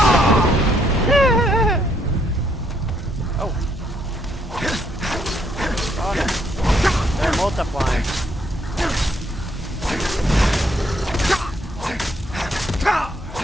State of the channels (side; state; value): both; normal; correlation 0.71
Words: Oh no. They're multiplying.